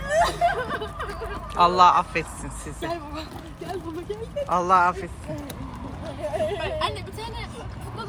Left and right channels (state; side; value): identical; both; correlation 1.00